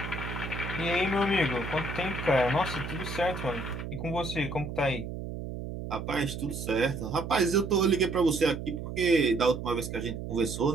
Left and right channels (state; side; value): noise; right; hum, 7 dB below the sound